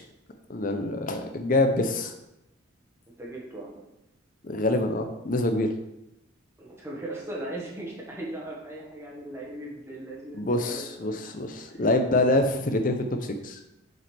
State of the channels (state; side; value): normal; both; correlation 0.24